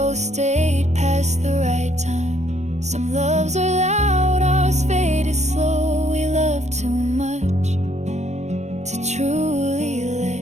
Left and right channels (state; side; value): late; left; 0.33 ms